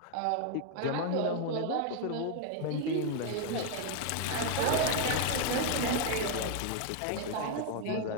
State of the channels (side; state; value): both; different; correlation 0.01